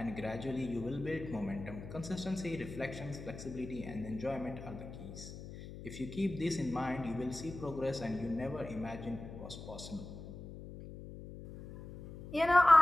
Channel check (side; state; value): left; noise; hum, 12 dB below the sound